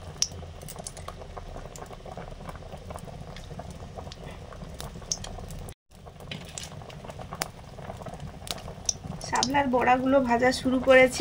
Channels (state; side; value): identical; both; correlation 1.00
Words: শাপলার বড়াগুলো ভাজা শুরু